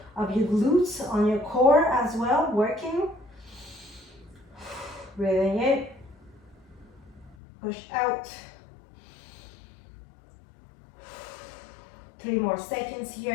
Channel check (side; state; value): right; drops out; at 7.4 s